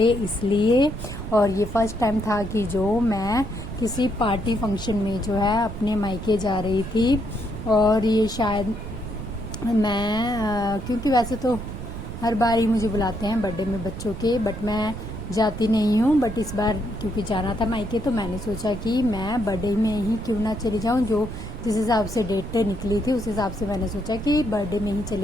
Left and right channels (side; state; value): right; noise; rumble, 8 dB below the sound